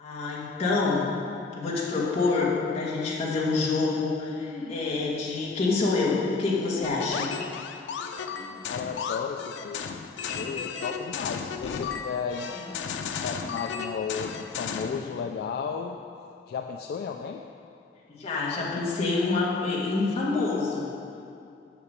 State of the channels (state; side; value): quieter; right; 3.9 dB